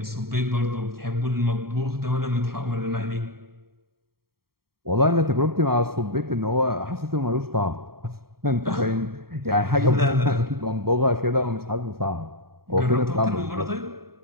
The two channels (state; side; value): late; left; 0.94 ms